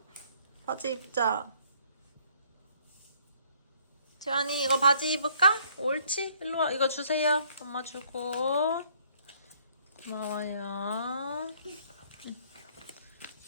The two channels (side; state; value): both; inverted; correlation -0.63